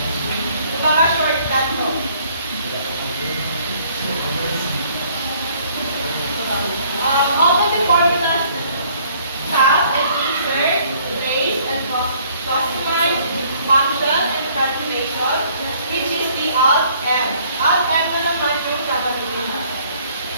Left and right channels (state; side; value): inverted; both; correlation -0.60